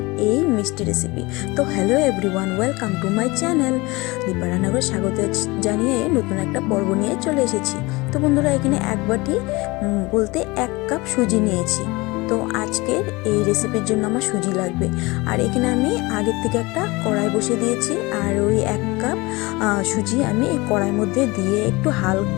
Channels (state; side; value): quieter; right; 23.4 dB